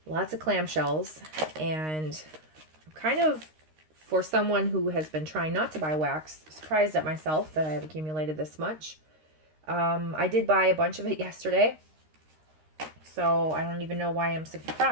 lots of clamshells and I'm kind of, for someone who has been trying not to buy wax, surprised at myself that I have accumulated this much. I did buy a bunch of it yesterday, so I don't even know why I'm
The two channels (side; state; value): left; late; 13 ms